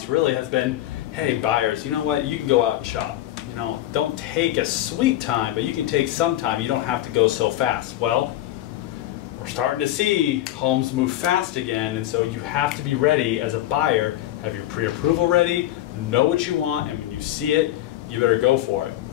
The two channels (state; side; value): quieter; right; 14.0 dB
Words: really has been, hey buyers, you know what, you can go out and shop. You know, don't take a sweet time, but you can take some time. You don't have to go so fast. Well, we're starting to see homes move fast again, and so you have to be ready as a buyer, have your pre-approval ready, know what you want, and when you see it, you better go for it.